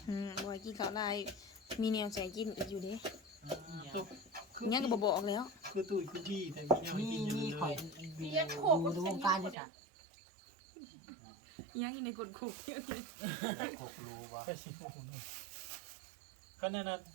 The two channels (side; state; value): left; drops out; at 9.6 s